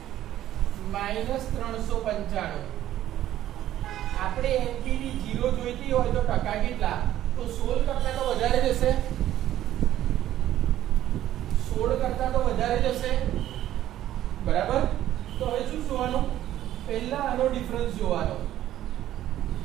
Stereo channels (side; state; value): left; quieter; 12.8 dB